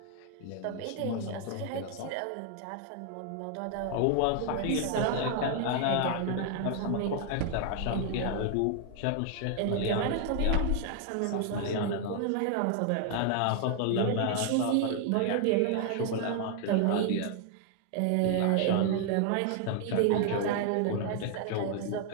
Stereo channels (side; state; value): both; different; correlation 0.00